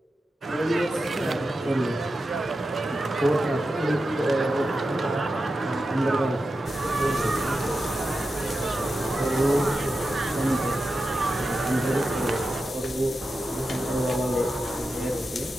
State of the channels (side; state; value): both; normal; correlation 0.91